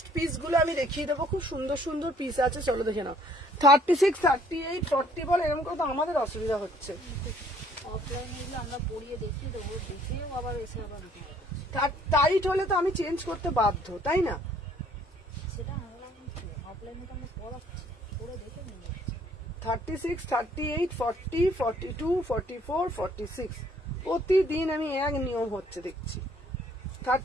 পিস গুলো আমি দেখিয়ে দেবো, খুব সুন্দর সুন্দর পিস আছে। চলো দেখে নাও 36, 38, 40 বল, এরকম করে তো আমাদের অসুবিধা হচ্ছে। অফলাইনে আমরা পড়িয়ে দেখিয়ে দেবো, দেখেও আবার এসে আবার টাইট হলে তো আমি চেঞ্জ করতে বাধ্য, তাই না? সেটা অফলাইনে তো আমরা পড়াচ্ছি, পড়ে দেখে নিয়ে যাচ্ছি। 36, 38, 40, 42, 44, 46 প্রতিদিন আমি এক নিয়ম হচ্ছে দেখছি।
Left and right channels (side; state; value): both; normal; correlation 0.62